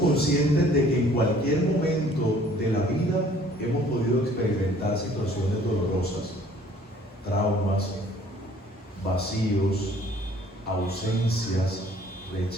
de que en cualquier momento de la vida hemos podido experimentar situaciones dolorosas, traumas, vacíos, ausencias,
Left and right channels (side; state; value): both; normal; correlation 0.56